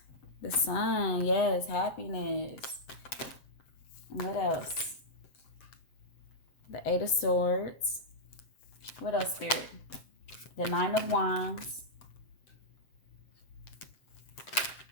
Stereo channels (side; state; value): right; late; 7.7 ms